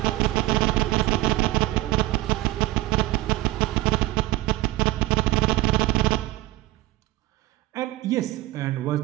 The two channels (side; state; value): left; quieter; 18.1 dB